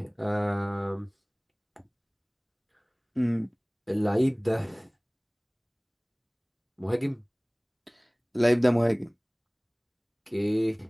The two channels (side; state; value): both; identical; correlation 1.00